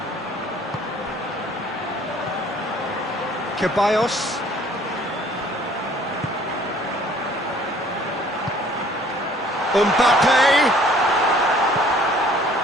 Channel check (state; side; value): normal; both; correlation 0.55